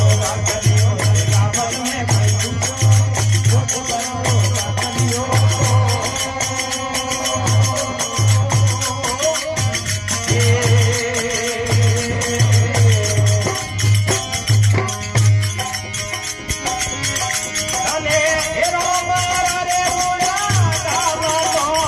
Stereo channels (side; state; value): both; identical; correlation 1.00